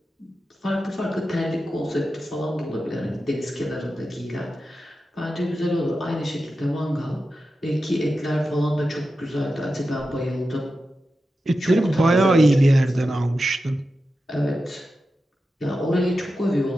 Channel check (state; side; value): normal; both; correlation 0.91